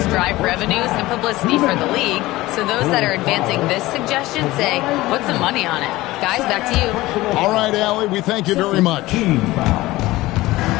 drive revenues and publicity for the league, so those that are advancing this suggestion say, put some money on it. Guys, back to you. All right, Allie, we thank you very much.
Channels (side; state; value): right; quieter; 18.4 dB